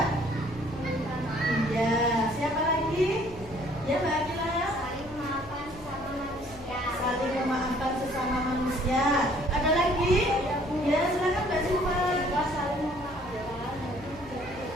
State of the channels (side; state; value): left; noise; hum, 19 dB below the sound